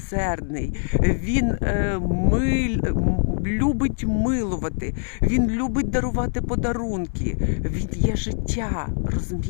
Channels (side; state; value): right; silent; 63 dB below the other